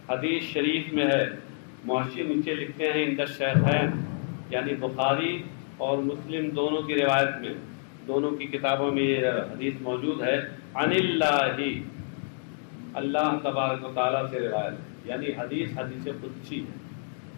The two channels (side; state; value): right; silent; digital silence